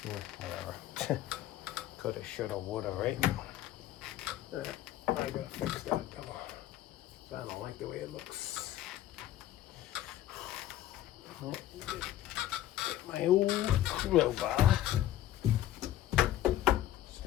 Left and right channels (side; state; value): right; quieter; 13.1 dB